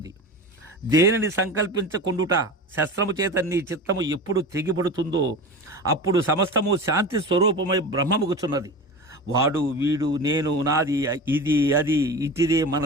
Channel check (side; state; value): both; normal; correlation 0.30